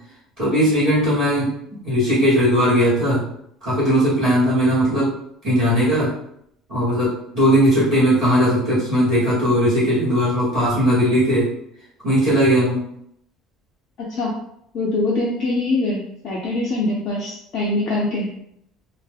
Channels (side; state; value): both; normal; correlation 0.39